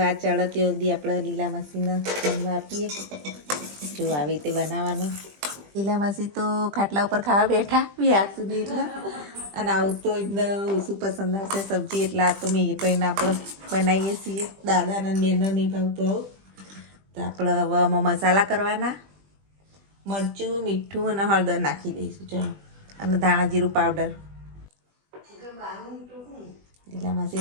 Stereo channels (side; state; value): left; late; 20 ms